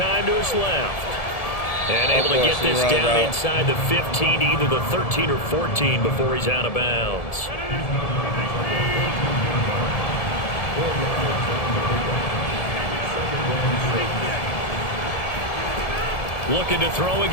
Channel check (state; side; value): late; right; 1.7 ms